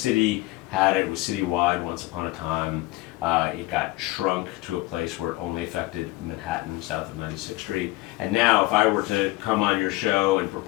had it. It was citywide once upon a time. It got shrunk to a place where it only affected Manhattan, south of 96th Street. And now, if I were to come on your show and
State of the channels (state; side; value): quieter; right; 20.1 dB